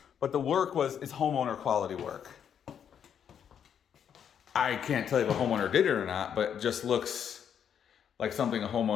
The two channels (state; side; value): quieter; right; 8.4 dB